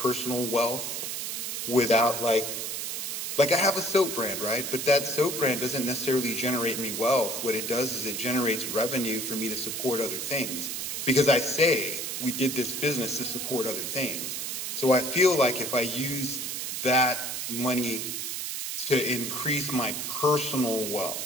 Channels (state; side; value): noise; right; hiss, 4 dB below the sound